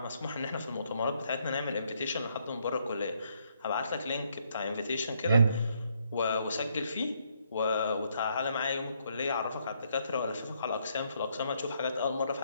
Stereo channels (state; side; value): inverted; both; correlation -0.73